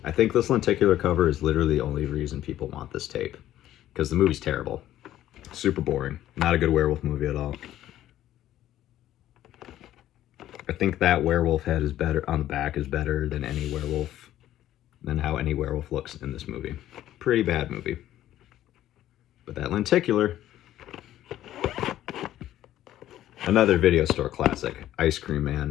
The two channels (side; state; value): right; quieter; 13.0 dB